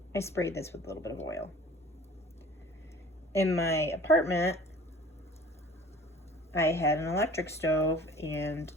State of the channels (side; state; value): both; normal; correlation 0.46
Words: sprayed this with a little bit of oil. In my apartment, I had an electric stove and,